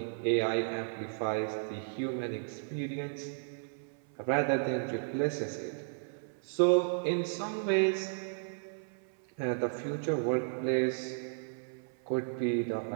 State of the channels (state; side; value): silent; left; 55 dB below the other